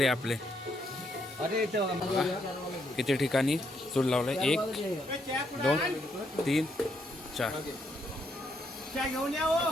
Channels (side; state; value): both; normal; correlation 0.75